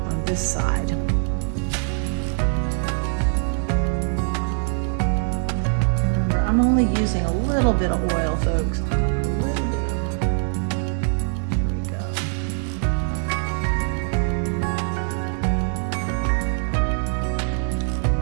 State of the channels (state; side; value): silent; left; 58 dB below the other